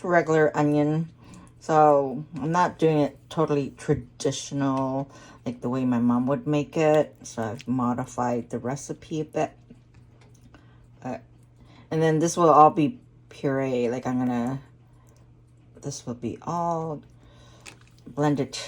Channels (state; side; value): identical; both; correlation 1.00